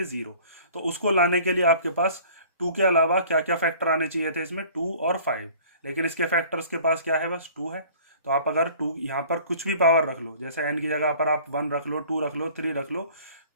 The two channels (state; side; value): inverted; both; correlation -0.49